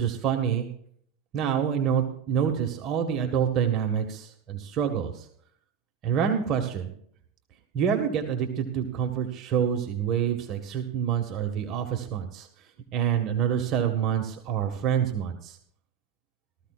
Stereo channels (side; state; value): left; quieter; 7.9 dB